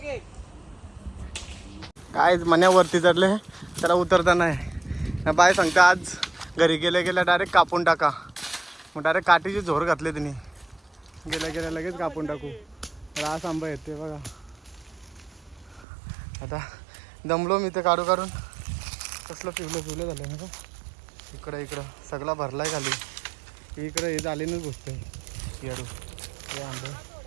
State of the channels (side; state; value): left; drops out; at 15.9 s